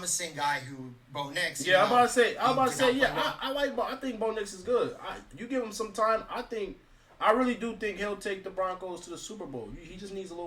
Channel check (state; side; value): identical; both; correlation 1.00